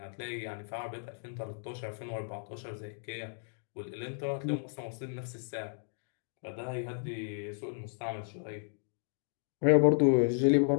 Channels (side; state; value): right; silent; digital silence